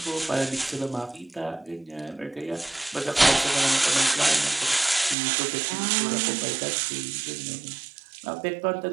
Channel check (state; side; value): drops out; left; at 5.2 s